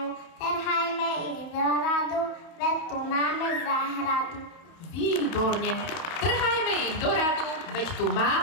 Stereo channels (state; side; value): late; right; 32 ms